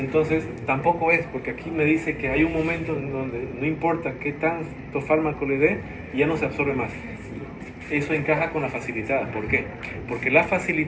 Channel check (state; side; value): identical; both; correlation 1.00